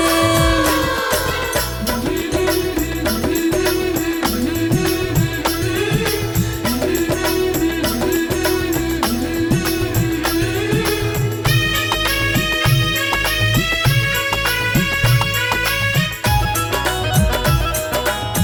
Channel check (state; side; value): identical; both; correlation 1.00